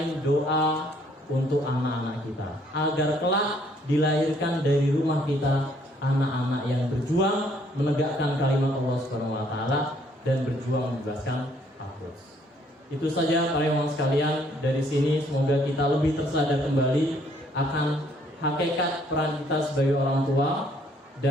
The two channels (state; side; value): normal; both; correlation 0.65